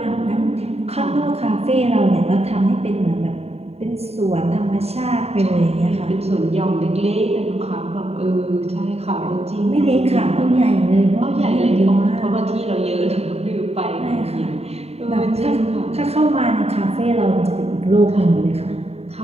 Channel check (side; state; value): left; late; 0.30 ms